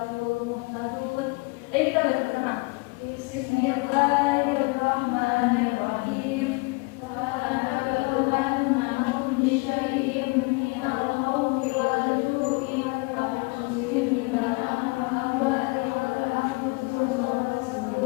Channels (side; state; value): right; quieter; 28.4 dB